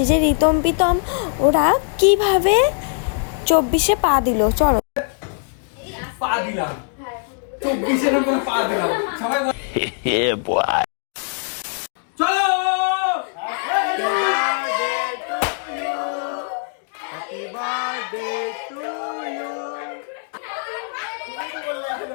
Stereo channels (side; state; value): right; silent; digital silence